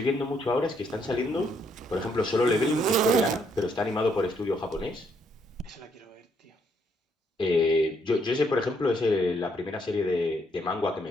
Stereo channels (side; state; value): both; normal; correlation 0.72